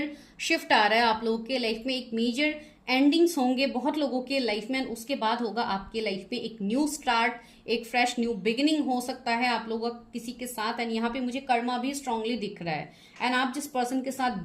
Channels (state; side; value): identical; both; correlation 1.00